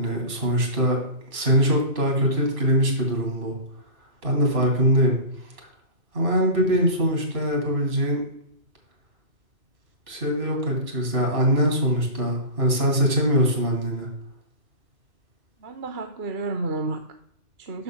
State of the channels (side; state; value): left; late; 2.6 ms